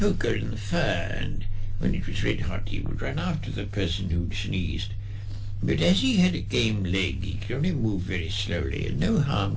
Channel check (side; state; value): both; identical; correlation 1.00